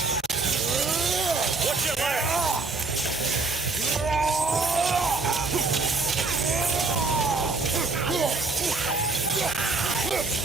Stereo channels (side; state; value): left; quieter; 3.8 dB